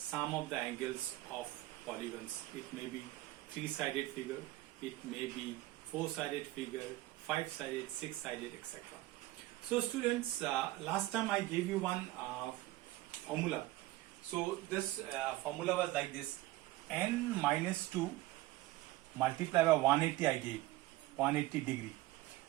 of the angles of polygons. It may be 3-sided figure, it may be 4-sided figure, 5-sided, 6-sided, etc. So students, last time I gave you one formula. So this formula was like this: n minus 2 multiplied by 180. I gave 180 degree.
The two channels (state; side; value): quieter; left; 17.7 dB